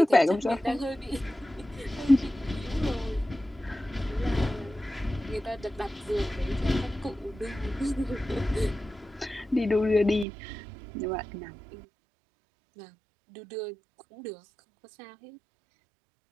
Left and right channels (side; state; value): left; drops out; at 10.2 s